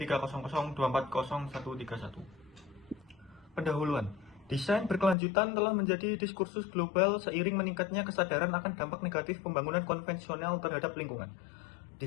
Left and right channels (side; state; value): right; drops out; at 5.2 s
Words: Pendahuluan. Desain berkelanjutan telah menjadi diskursus global seiring meningkatnya kesadaran akan dampak negatif pembangunan konvensional terhadap lingkungan.